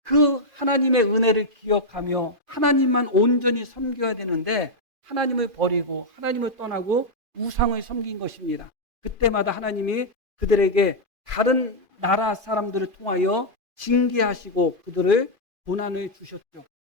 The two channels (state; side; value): late; left; 2.5 ms